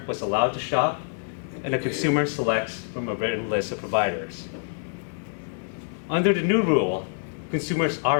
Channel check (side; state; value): right; silent; digital silence